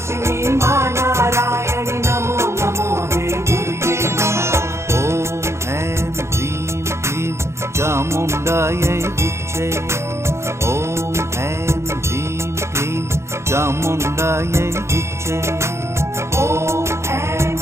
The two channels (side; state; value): left; late; 0.13 ms